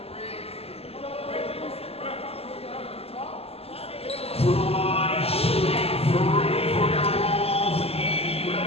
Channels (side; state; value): right; late; 0.29 ms